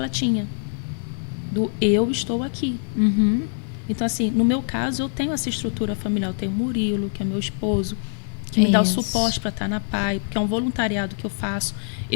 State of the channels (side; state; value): right; silent; 63 dB below the other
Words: tinha. Do eu estou aqui. Então, assim, no meu caso, eu tenho essa estrutura familiar. Eu tenho o Murilo, que é meu esposo, que me dá o suporte para estar na PAI, porque é um voluntariado que eu faço.